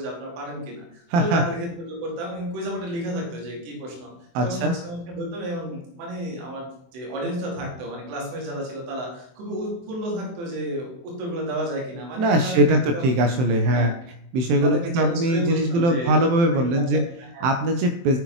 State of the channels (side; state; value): left; late; 23 ms